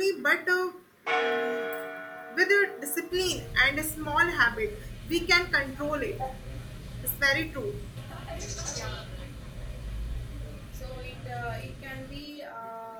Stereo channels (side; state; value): both; identical; correlation 1.00